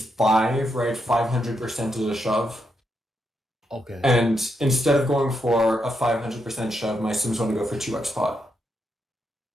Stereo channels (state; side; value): normal; both; correlation 0.82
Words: 5, right? 500% is a shove. Okay. And instead of going for a 500% shove, my sims want to go for 2x pot.